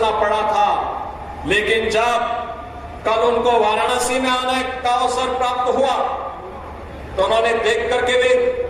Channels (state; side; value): identical; both; correlation 1.00